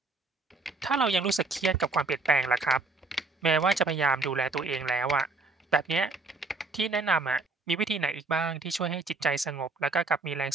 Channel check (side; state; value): left; quieter; 3.5 dB